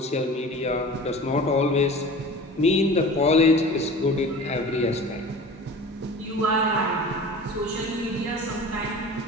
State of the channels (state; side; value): normal; both; correlation 0.39